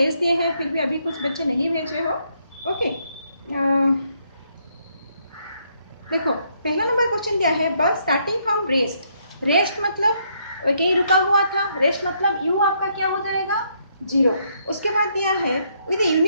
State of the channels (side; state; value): both; inverted; correlation -0.73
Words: दिए हैं, फिर भी अभी कुछ बच्चे नहीं भेजे हो। ओके, देखो पहला नंबर क्वेश्चन दिया है, बस स्टार्टिंग फ्रॉम रेस्ट। रेस्ट मतलब कहीं रुका हुआ था, रेस्ट मतलब यू आपका क्या हो जाएगा, 0। उसके बाद दिया है with